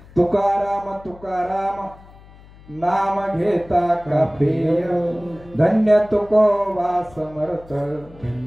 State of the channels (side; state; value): left; noise; hum, 23 dB below the sound